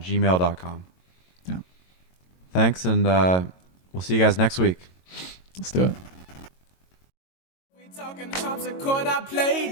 gmail.com. Yeah. Thanks, and we'll see you guys next week. Let's do it. We talking harpsichord, I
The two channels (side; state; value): right; late; 22 ms